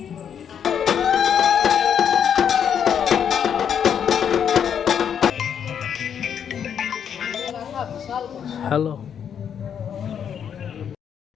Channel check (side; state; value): right; quieter; 8.2 dB